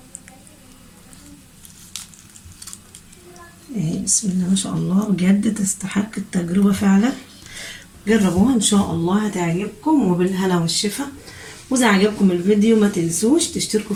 اهي بسم الله ما شاء الله، بجد تستحق التجربه فعلا. جربوها ان شاء الله هتعجبكم، وبالهنا والشفا. واذا عجبكم الفيديو ما تنسوش تشتركوا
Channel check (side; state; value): both; identical; correlation 1.00